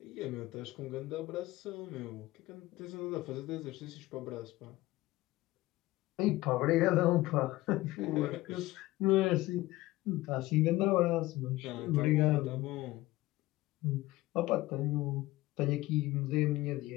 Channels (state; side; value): quieter; right; 18.2 dB